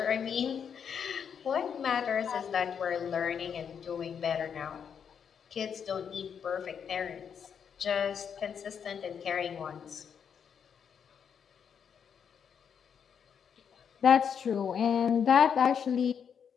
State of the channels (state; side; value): quieter; right; 7.4 dB